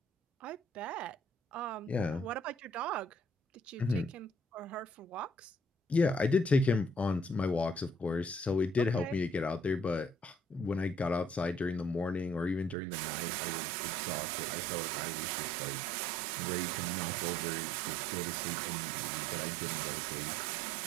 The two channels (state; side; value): drops out; left; at 12.8 s